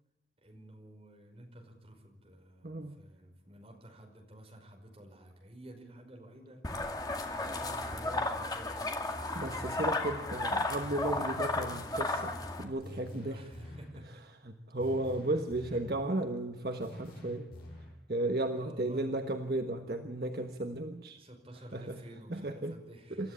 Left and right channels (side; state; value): both; normal; correlation 0.39